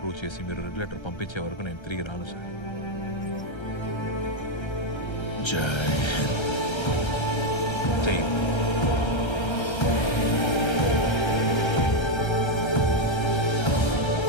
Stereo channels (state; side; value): late; right; 1.3 ms